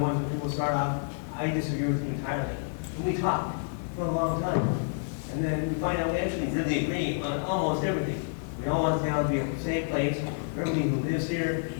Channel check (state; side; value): silent; right; 59 dB below the other